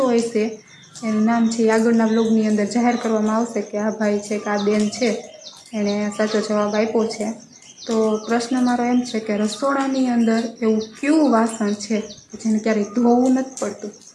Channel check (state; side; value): identical; both; correlation 1.00